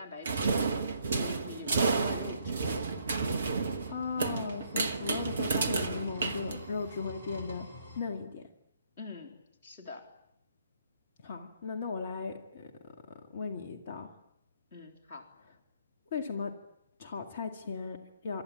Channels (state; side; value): inverted; both; correlation -0.69